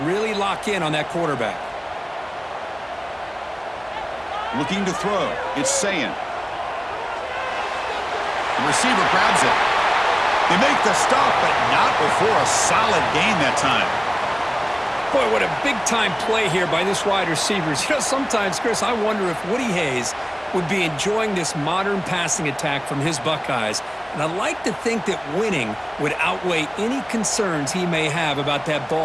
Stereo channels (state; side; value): identical; both; correlation 1.00